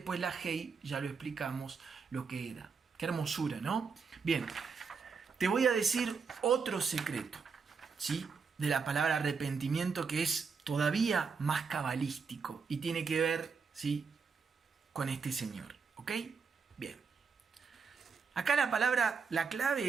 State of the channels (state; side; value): quieter; left; 5.4 dB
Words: la hei, ya lo explicamos lo que era. Qué hermosura, ¿no? Bien, te voy a decir otro secreto, ¿sí?, de la palabra arrepentimiento, que es todavía más cabalístico y tiene que ver, ¿sí?, con este señor, ¿ok? Bien. Acá la